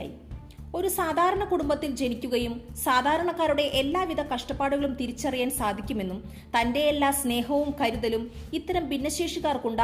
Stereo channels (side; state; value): both; identical; correlation 1.00